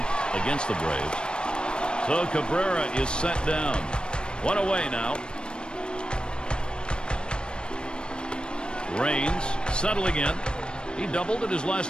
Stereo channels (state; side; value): late; right; 0.053 ms